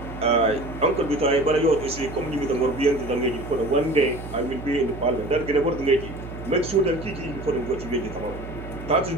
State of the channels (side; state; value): right; noise; hum, 11 dB below the sound